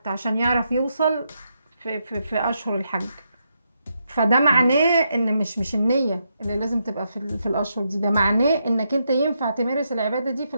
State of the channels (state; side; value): inverted; both; correlation -0.81